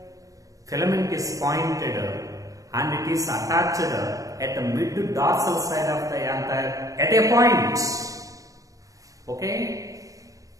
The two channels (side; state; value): left; late; 0.16 ms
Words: Filament is pointed and it is attached at the mid dorsal side of the anther at a point. Okay?